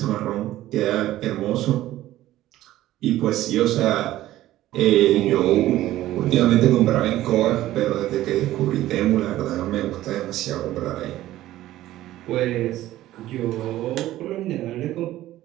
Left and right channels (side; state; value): left; quieter; 14.8 dB